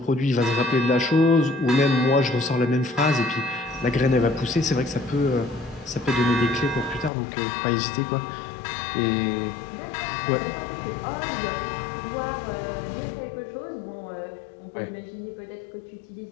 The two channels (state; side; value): drops out; right; at 7.1 s